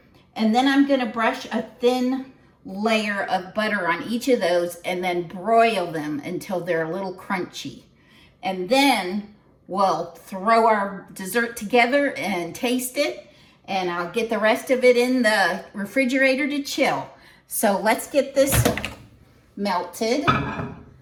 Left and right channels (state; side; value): identical; both; correlation 1.00